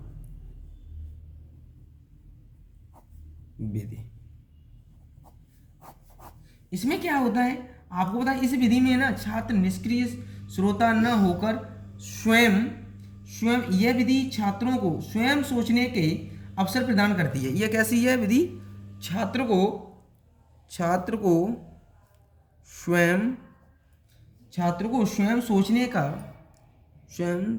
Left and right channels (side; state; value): both; identical; correlation 1.00